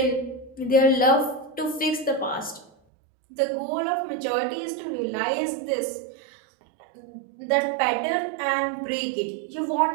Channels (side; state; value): left; drops out; at 2.7 s